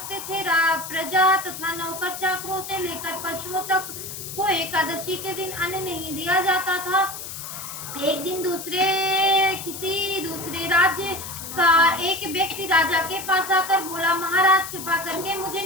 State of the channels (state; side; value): noise; left; hiss, 9 dB below the sound